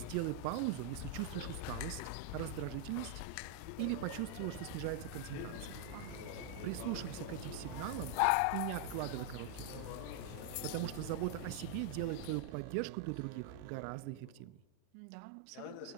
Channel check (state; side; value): different; both; correlation 0.00